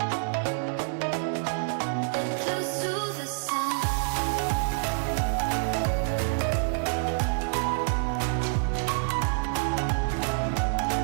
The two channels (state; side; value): silent; left; 60 dB below the other